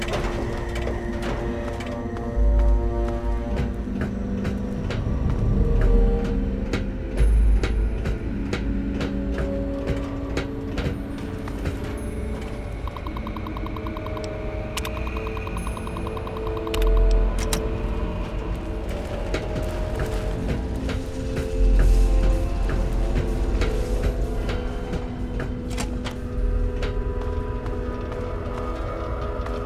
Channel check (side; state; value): both; identical; correlation 1.00